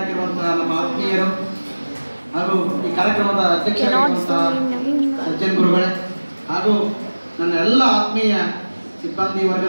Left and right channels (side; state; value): both; inverted; correlation -1.00